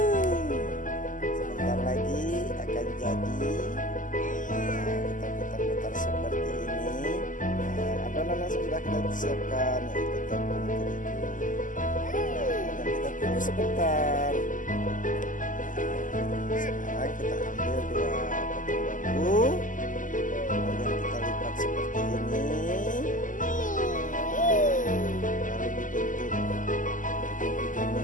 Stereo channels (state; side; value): late; right; 0.38 ms